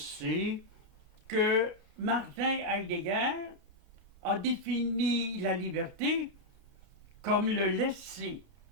que Martin Heidegger a défini la liberté comme le laisser-être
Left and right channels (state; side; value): normal; both; correlation -0.03